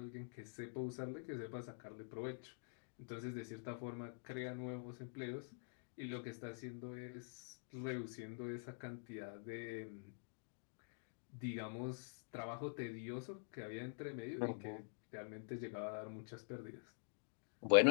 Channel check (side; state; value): right; silent; digital silence